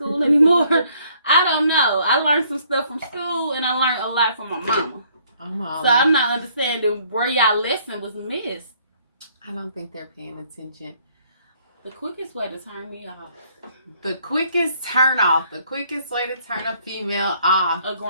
anymore? I don't know. I learned some stuff from school and I learned a lot from my mama. So I'm not understanding where y'all lesson was missed. I don't think they're paying attention. The quickest way to turn me off. The quickest turn off. The quickest way to turn a female off. A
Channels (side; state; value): both; inverted; correlation -0.64